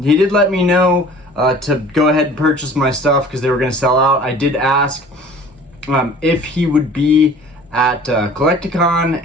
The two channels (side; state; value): both; normal; correlation 0.47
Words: He did let me know to go ahead and purchase my stuff because they were going to sell out. I did ask if he would be at Collecticon,